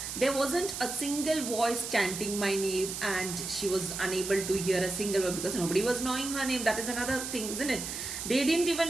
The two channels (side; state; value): right; noise; hiss, 6 dB below the sound